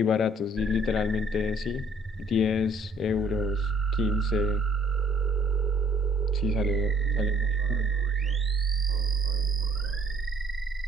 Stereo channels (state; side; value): normal; both; correlation 0.60